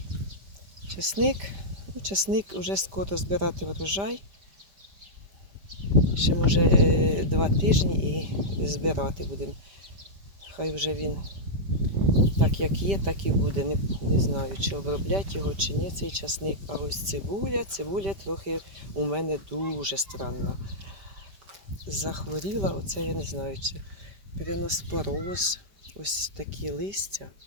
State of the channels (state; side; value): late; left; 5.1 ms